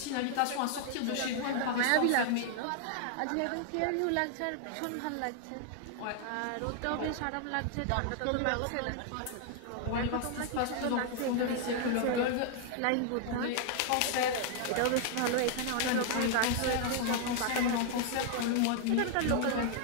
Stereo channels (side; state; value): both; different; correlation 0.00